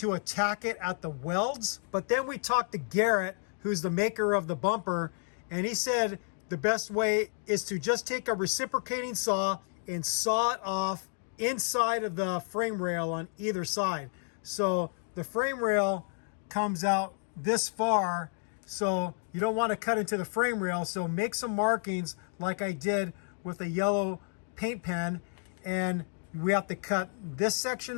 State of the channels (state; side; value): silent; right; 57 dB below the other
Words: attack it at the welds, but then we talked to Garrett, who's the maker of the bumper, and he said the best way is to just take a reciprocating saw and saw it off inside of the frame rail on either side. So the frame rail comes out this far, so you don't want to cut into the frame rail. So make some markings like I did with a yellow paint pen, and we have to cut this